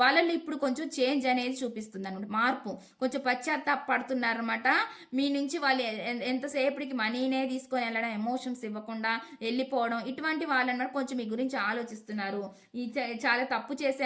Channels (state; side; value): identical; both; correlation 1.00